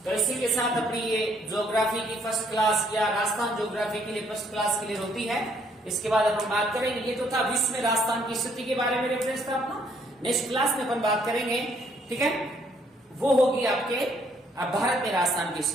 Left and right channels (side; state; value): both; normal; correlation 0.67